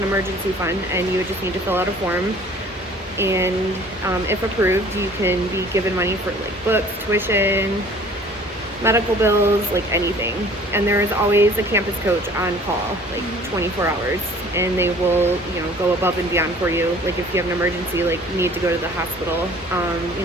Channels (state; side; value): normal; both; correlation 0.51